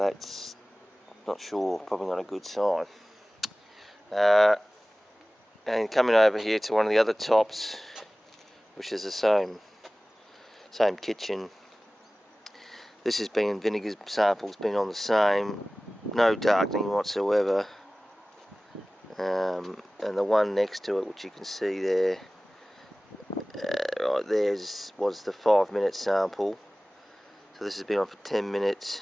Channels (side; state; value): both; normal; correlation 0.98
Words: not sure, probably not a good sign. And coming over here to one of the other tops, which is the same kitchen. This has been, vinegar sample's been on the same, no darkening whatsoever. And the one next to it, which you can see there, right there, was the 5-minute sample. So this has been on for 10 minutes.